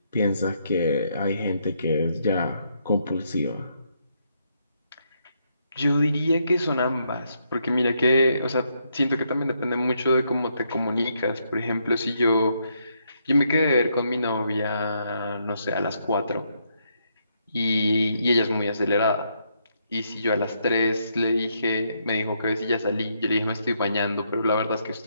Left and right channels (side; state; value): both; inverted; correlation -0.76